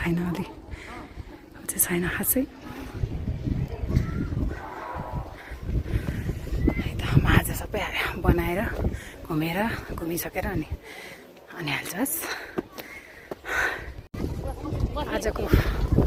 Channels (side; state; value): both; identical; correlation 1.00